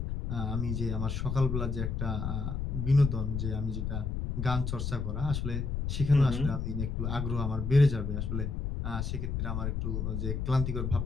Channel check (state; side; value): noise; left; rumble, 2 dB below the sound